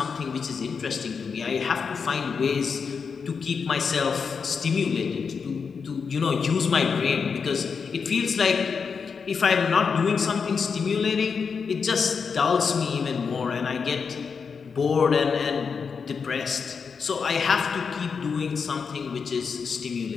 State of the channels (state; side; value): quieter; right; 5.7 dB